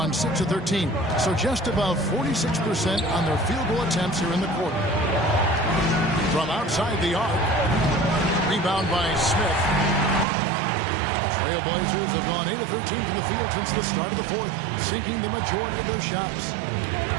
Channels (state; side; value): drops out; left; at 10.2 s